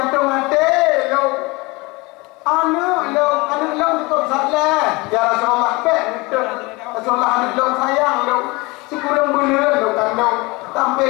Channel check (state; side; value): quieter; right; 24.5 dB